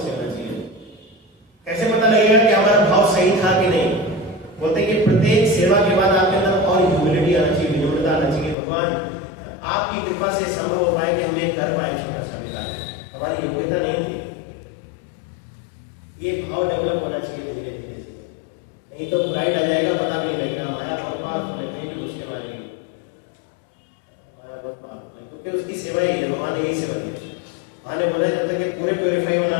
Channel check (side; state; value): right; drops out; at 8.6 s